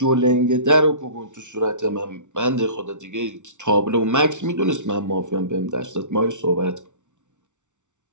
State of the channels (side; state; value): left; late; 0.85 ms